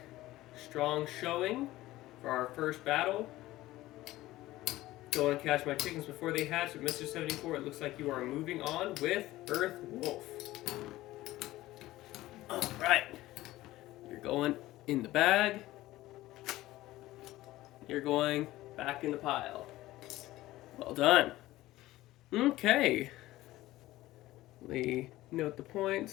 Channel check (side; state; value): right; quieter; 16.8 dB